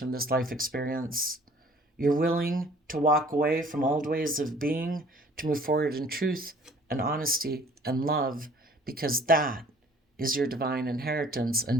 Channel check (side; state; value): both; normal; correlation 0.53